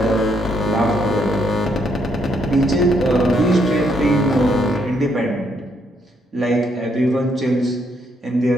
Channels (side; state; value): both; normal; correlation 0.73